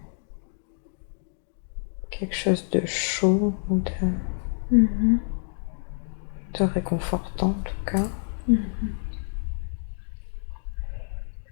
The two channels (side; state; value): right; silent; digital silence